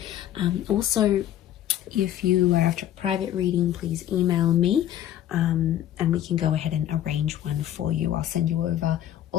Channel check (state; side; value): quieter; right; 11.9 dB